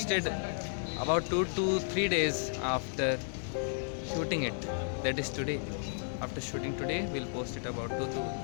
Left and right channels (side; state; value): right; silent; digital silence